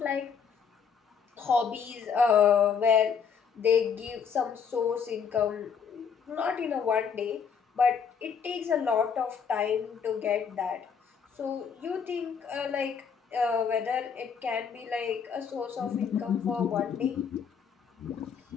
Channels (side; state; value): right; quieter; 6.7 dB